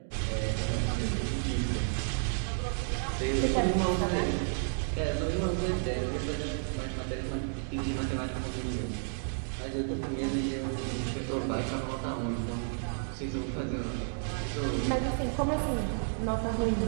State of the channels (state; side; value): silent; left; digital silence